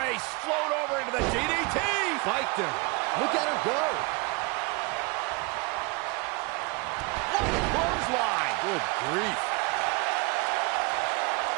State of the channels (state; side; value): quieter; left; 27.7 dB